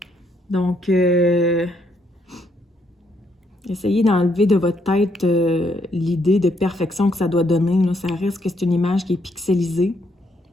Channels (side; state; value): both; normal; correlation 0.73